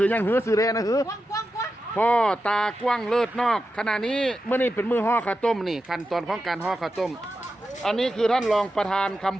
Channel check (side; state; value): both; normal; correlation 0.90